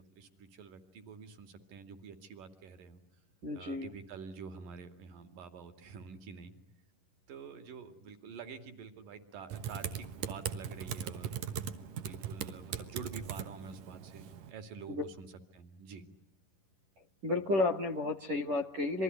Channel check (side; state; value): left; late; 11 ms